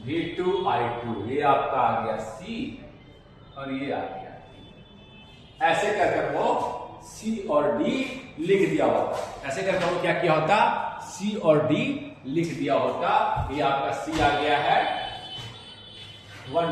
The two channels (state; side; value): identical; both; correlation 1.00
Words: V2 I2, ये आपका आ गया C और ये आ गया D। ऐसे कर वो C और D लिख दिया होता, ऐसे करके वो क्या किया होता C और D लिख दिया होता, ये आपका C आ गया है 1